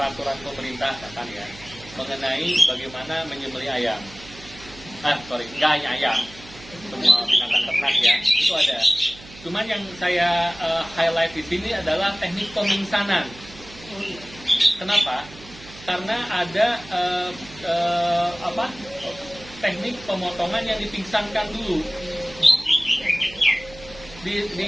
pemerintah kan ya mengenai bagaimana menyembelih ayam. Nggak hanya ayam, semua binatang ternak ya, itu ada. Cuman yang saya highlight di sini adalah teknik pemingsanan. Kenapa? Karena ada teknik pemotongan yang dipingsankan dulu, di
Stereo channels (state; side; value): noise; right; hum, 19 dB below the sound